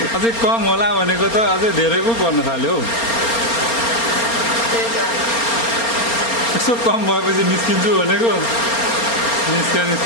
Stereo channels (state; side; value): late; right; 4.3 ms